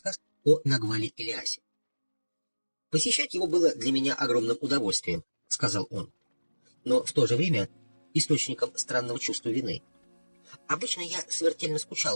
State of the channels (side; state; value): both; inverted; correlation -1.00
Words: о Нагвале Ильясе. «Посещать его было для меня огромным удовольствием», — сказал он, но в то же время источником странного чувства вины. Обычно я смертельно